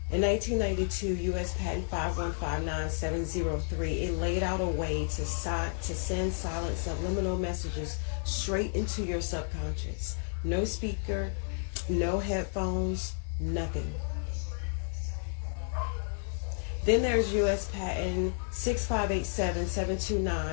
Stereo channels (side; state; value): right; silent; digital silence